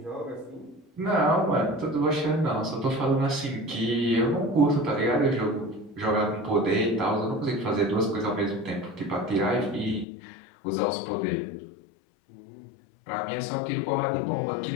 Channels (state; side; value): drops out; right; at 10.1 s